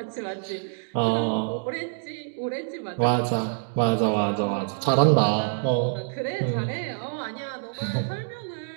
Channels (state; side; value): silent; left; digital silence